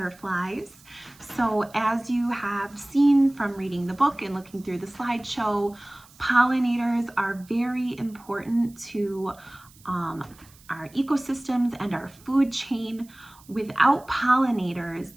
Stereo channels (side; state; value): right; noise; hiss, 26 dB below the sound